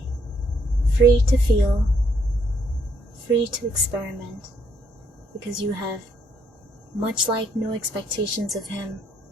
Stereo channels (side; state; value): both; normal; correlation 0.70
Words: free to feel, free to experiment, because you have, much like no expectations of him,